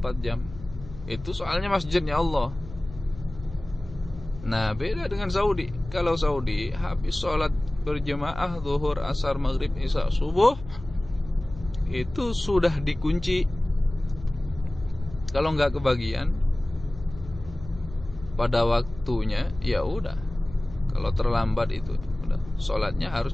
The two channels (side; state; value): left; noise; hum, 15 dB below the sound